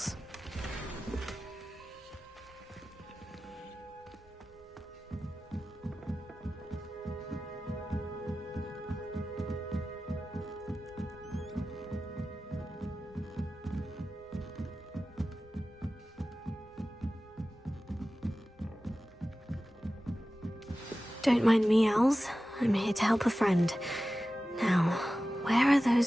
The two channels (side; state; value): both; normal; correlation 0.95